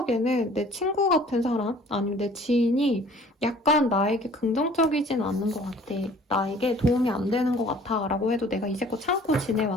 내 친구 같은 사람 아니면 내 지인이 약간 나에게 긍정적이진 않는 것 같아. 나에게 도움이 안 되는 것 같아 라고 해도 내가 이제껏 참고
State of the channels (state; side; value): normal; both; correlation 0.52